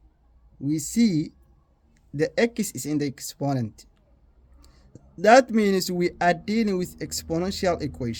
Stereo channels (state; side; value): identical; both; correlation 1.00